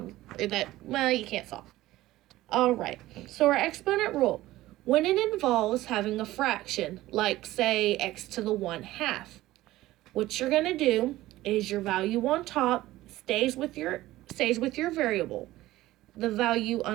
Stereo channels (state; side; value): quieter; left; 16.4 dB